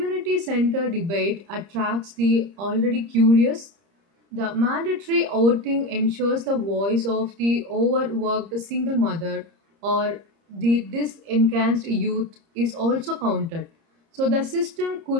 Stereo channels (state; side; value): late; left; 30 ms